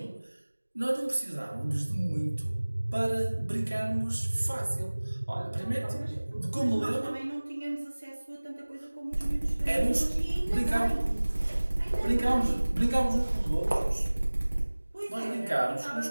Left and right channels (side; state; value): both; inverted; correlation -1.00